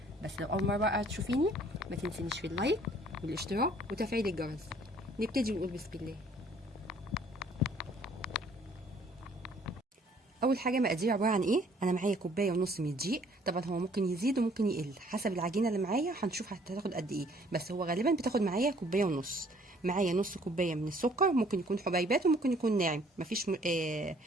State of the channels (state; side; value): normal; both; correlation 0.59